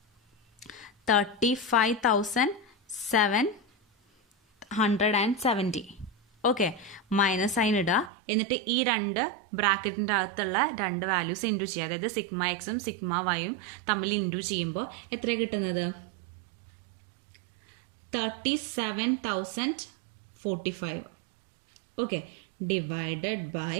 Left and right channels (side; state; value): left; drops out; at 8.1 s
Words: 35,770. ഓക്കെ, മൈനസ് സൈൻ ഇടുക. എന്നിട്ട് ഈ രണ്ട് ബ്രാക്കറ്റിൻ്റെ അകത്തുള്ള രണ്ട് വാല്യൂസ് ഇൻറ്റു ചെയ്യുക. അതായത് സിഗ്മ എക്സും സിഗ്മ വൈയും തമ്മിൽ ഇൻറ്റു ചെയ്യുമ്പോൾ എത്ര കിട്ടുന്നത് 37,045. ഓക്കെ, ഡിവൈഡഡ് ബൈ